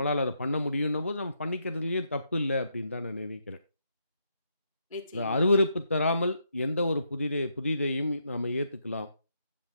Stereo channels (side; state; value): both; inverted; correlation -0.79